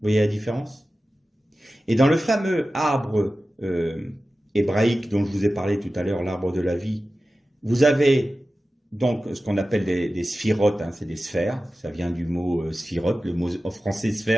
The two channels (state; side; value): normal; both; correlation 0.94